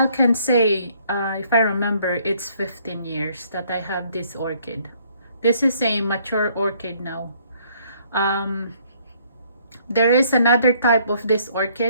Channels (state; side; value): inverted; both; correlation -0.64